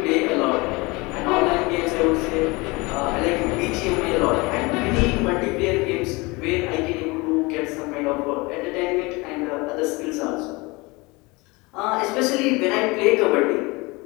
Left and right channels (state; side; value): quieter; right; 24.7 dB